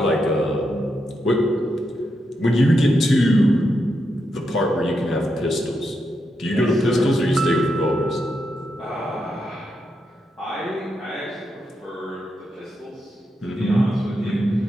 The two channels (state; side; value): normal; both; correlation 0.84